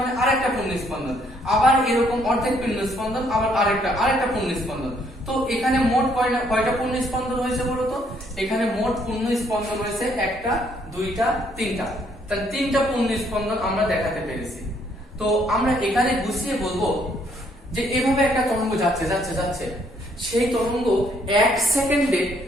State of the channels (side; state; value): both; normal; correlation 0.68